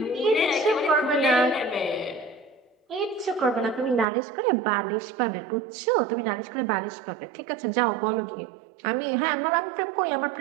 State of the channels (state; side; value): drops out; left; at 4.0 s